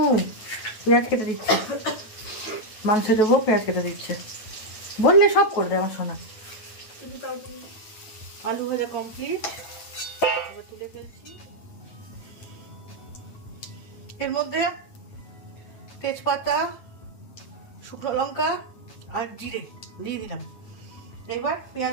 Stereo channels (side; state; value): right; late; 9.2 ms